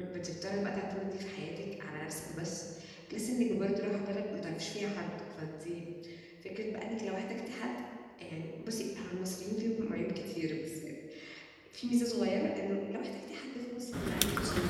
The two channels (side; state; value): both; identical; correlation 1.00